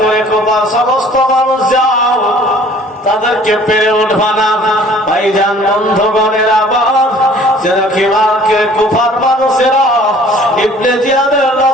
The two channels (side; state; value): both; normal; correlation 0.52